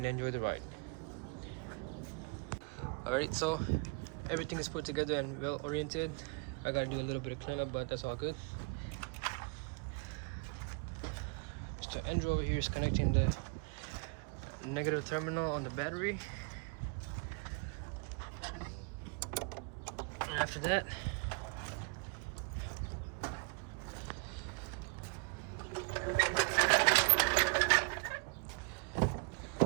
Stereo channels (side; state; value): left; quieter; 32.8 dB